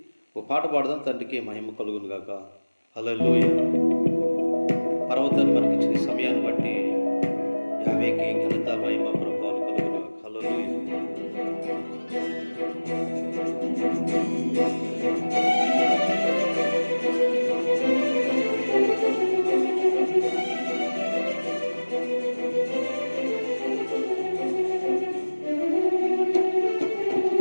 ఓ పాట పాడదాం. తండ్రికి మహిమ కలుగును గాక. హల్లెలూయా. పర్వతాన్ని మనకి ఇచ్చిన సమయాన్ని బట్టి యావేకి ఘనత మహిమ ప్రభావాలు కలుగును గాక. హల్లెలూయా.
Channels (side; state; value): both; inverted; correlation -1.00